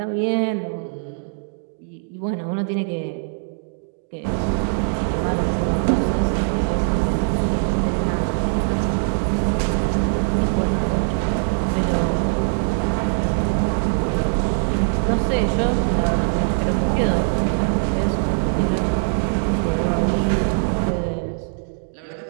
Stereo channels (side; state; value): left; silent; digital silence